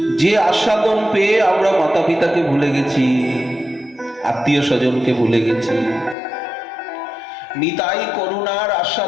যে আস্বাদন পেয়ে আমরা মাতা পিতাকে ভুলে গেছি, আত্মীয় স্বজনকে ভুলে গেছি, নিতাই করুণার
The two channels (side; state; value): right; drops out; at 6.2 s